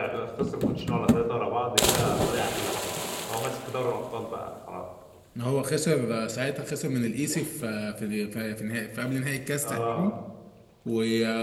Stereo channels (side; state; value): both; identical; correlation 1.00